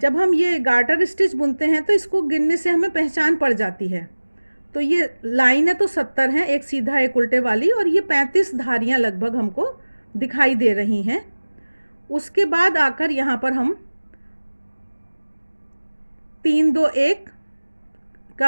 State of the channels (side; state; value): both; inverted; correlation -1.00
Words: हम ये गार्टर स्टिच बुनते हैं तो इसको गिनने से हमें पहचान पड़ जाती है। तो ये लाइनें तो 70 हैं, एक सीधा एक उल्टे वाली, और ये 35 धारियाँ लगभग हमको दिखाई दे रही हैं। उसके बाद आकर यहाँ पर हम 3-2-1